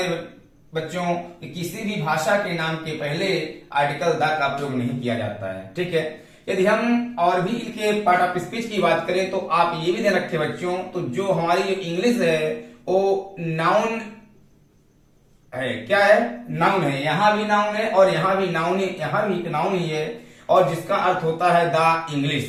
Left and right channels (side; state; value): both; identical; correlation 1.00